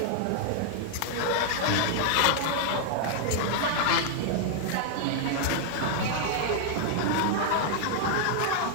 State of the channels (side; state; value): both; different; correlation -0.01